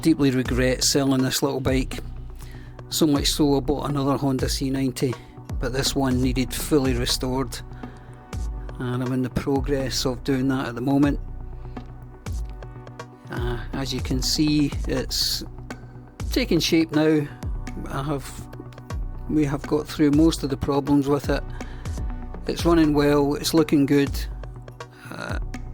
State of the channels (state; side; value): identical; both; correlation 1.00